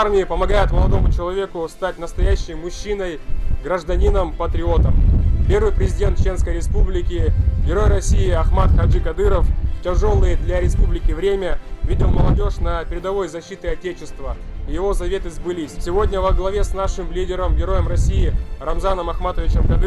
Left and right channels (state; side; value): identical; both; correlation 1.00